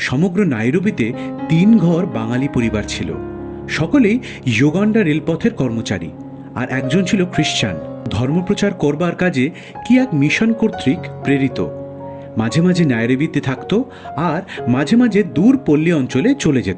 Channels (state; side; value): identical; both; correlation 1.00